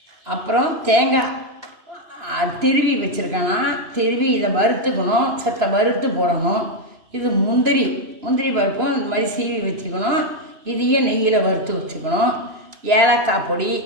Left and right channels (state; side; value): late; left; 2.9 ms